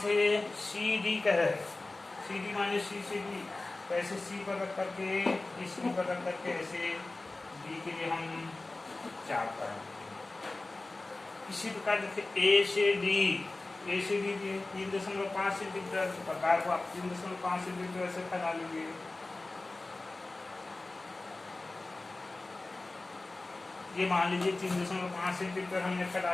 से, सी डी कह रहे, सी डी माने सी से डी, तो ऐसे सी पर रख करके, इस सी पर रख करके ऐसे डी के लिए हम 4 पर। इसी प्रकार देखिए ए से डी, ए से डी 3.5 सेंटीमीटर, प्रकार को आप 3.5 सेंटीमीटर ऐसे फैला लेंगे। ये मान लीजिए 3.5 सेंटीमीटर हमने फैला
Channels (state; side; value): quieter; right; 3.1 dB